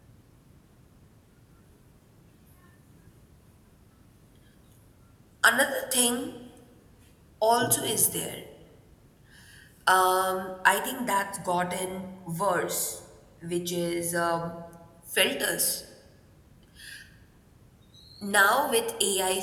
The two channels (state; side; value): identical; both; correlation 1.00